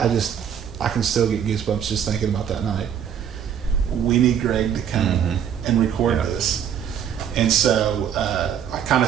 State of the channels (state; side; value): quieter; left; 8.7 dB